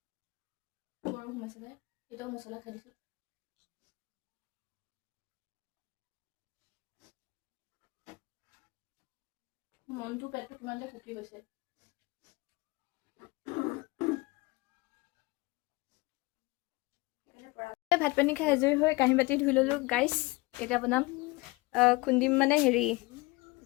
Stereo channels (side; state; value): right; quieter; 23.6 dB